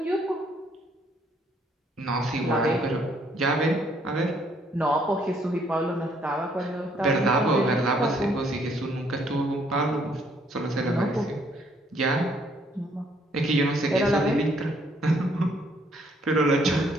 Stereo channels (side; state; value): both; normal; correlation 0.67